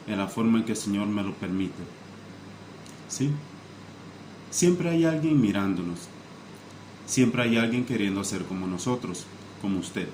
en la forma en que el Señor me lo permite. ¿Sí? Siempre hay alguien mirándonos. Siempre hay alguien queriendo ser como nosotros, como usted.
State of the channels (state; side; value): identical; both; correlation 1.00